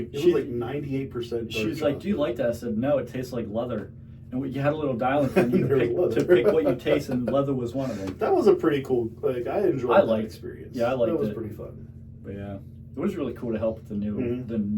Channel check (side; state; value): both; identical; correlation 1.00